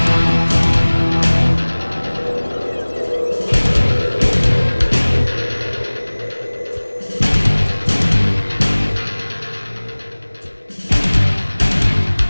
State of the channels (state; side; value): inverted; both; correlation -1.00